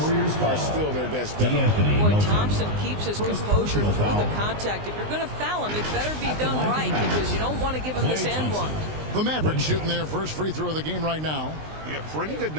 are still their best bet. Boy, Thompson keeps his composure through the contact. If you're going to foul him, it better be done right, because you don't want to give him this and one. The Mavericks shooting their first free throw of the game right now. Yeah, pretty good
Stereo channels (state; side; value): late; left; 19 ms